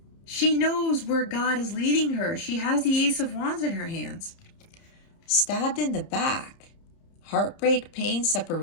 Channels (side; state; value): right; late; 30 ms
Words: She knows where God is leading her. She has the Ace of Wands in her hands. Stabbed in the back. Heartbreak, pain,